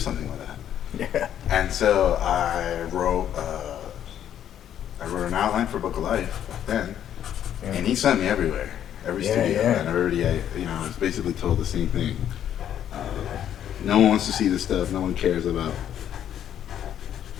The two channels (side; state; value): right; quieter; 10.2 dB